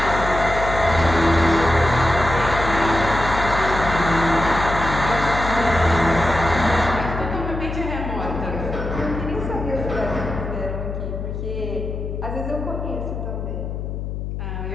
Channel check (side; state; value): left; noise; hum, 5 dB below the sound